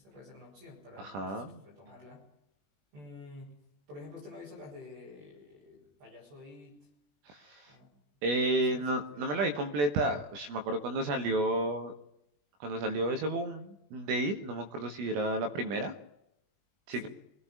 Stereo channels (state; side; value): late; left; 21 ms